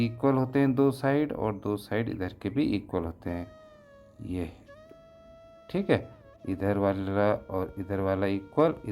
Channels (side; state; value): both; identical; correlation 1.00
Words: होते हैं, दो साइड, और दो साइड इधर के भी इक्वल होते हैं। ये, ठीक है, इधर वाला और इधर वाला इक्वल,